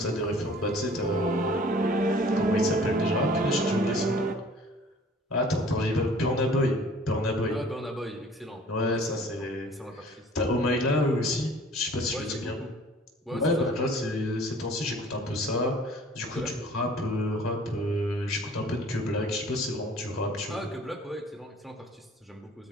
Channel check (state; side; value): normal; both; correlation 0.50